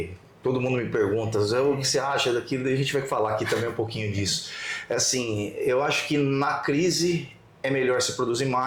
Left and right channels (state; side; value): identical; both; correlation 1.00